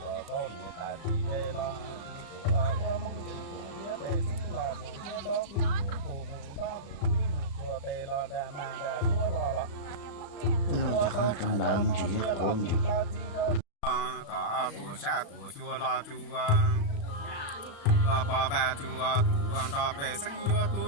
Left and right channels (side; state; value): right; late; 35 ms